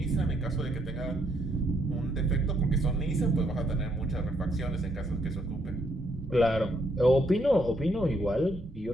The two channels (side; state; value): both; normal; correlation 0.73